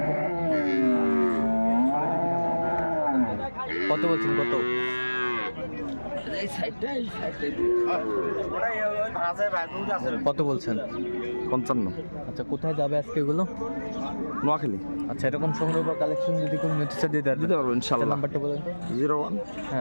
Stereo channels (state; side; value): inverted; both; correlation -1.00